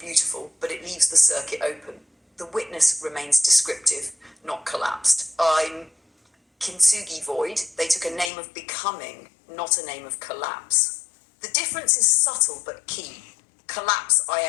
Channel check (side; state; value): right; drops out; at 8.3 s